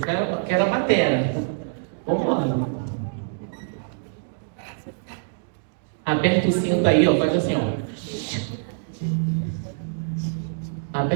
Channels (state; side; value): silent; left; digital silence